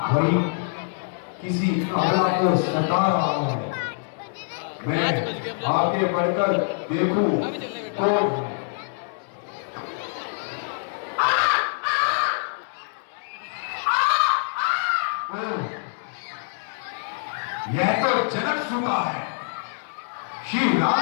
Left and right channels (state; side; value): silent; right; digital silence